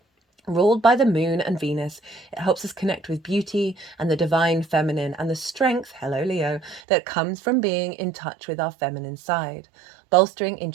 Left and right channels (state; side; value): drops out; left; at 6.8 s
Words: Ruled by the moon and Venus, it helps us connect with beauty and the divine feminine and the strength, hello Leo, that comes from being in touch with our feminine side, bolstering